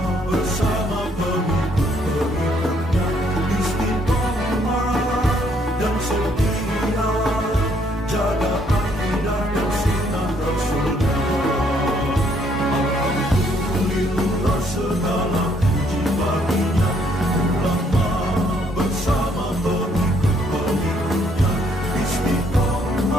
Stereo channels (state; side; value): normal; both; correlation 0.68